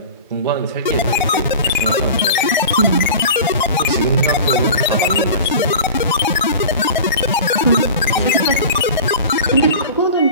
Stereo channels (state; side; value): inverted; both; correlation -0.36